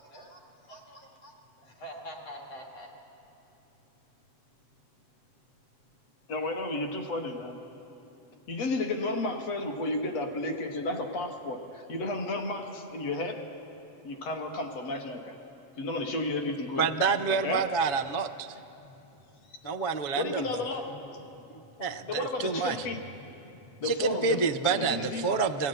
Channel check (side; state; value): right; late; 7.2 ms